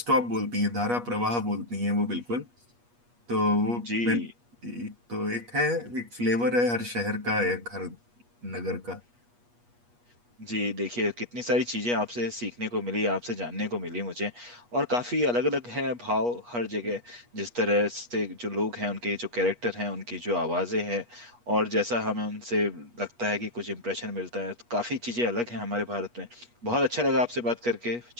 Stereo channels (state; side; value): late; left; 8.3 ms